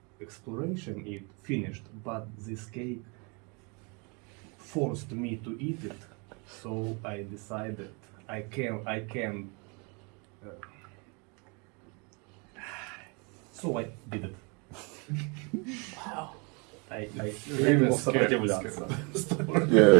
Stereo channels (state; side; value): quieter; left; 32.1 dB